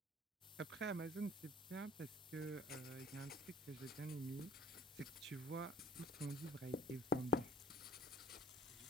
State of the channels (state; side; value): normal; both; correlation 0.49